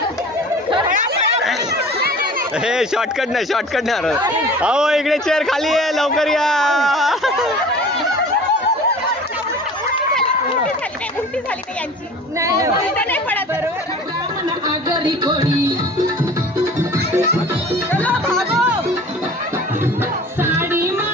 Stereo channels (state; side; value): normal; both; correlation 0.43